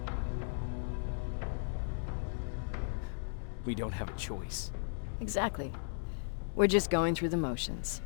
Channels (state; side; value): silent; right; digital silence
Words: We don't have a choice. Exactly. We're just going through the motions.